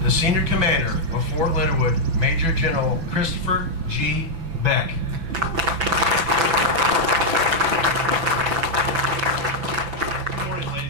the senior commander of Fort Leonard Wood, Major General Christopher G. Beck. Good morning,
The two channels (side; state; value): left; late; 6.0 ms